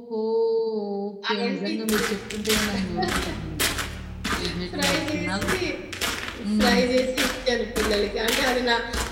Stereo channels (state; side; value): identical; both; correlation 1.00